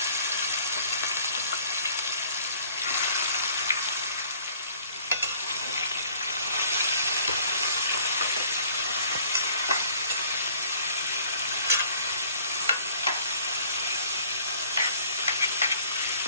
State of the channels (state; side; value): inverted; both; correlation -0.54